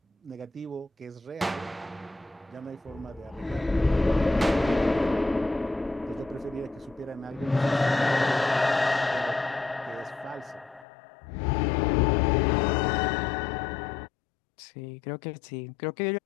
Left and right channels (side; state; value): right; drops out; at 10.9 s